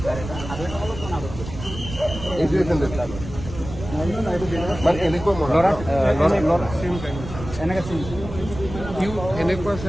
এইটোৱে চেণ্ডেল মানে এনেকুৱা সিও এনেকুৱা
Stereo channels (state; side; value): noise; right; rumble, 10 dB below the sound